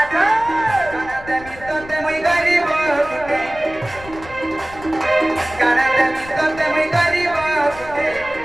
काना देमी तो ते मुई गरीब के काना देमी तो ते मुई गरीब के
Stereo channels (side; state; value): left; noise; rumble, 17 dB below the sound